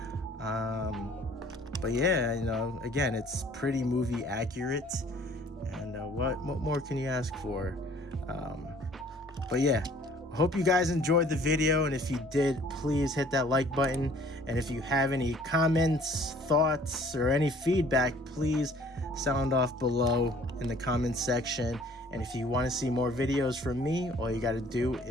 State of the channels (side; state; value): both; normal; correlation 0.55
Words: but yeah, you know, again, it's pretty movie accurate, and what more can you ask for? But yeah, Hope you guys enjoyed the video, and if you did, please hit that like button. And if you have any comments, thoughts, or any feedback, please sound off below in the comments section. And if you want to see more videos from me, all you got to do